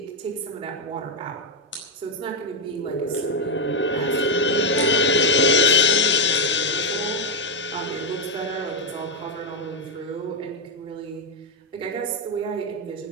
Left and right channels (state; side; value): normal; both; correlation 0.05